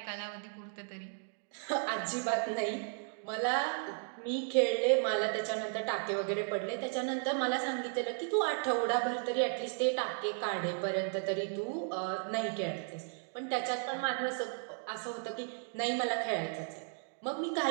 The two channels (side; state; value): left; silent; 55 dB below the other